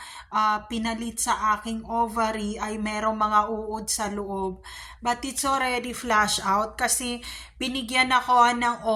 pinalit sa aking ovary ay merong mga uod sa loob. But it's already flush out kasi binigyan ako ng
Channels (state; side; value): identical; both; correlation 1.00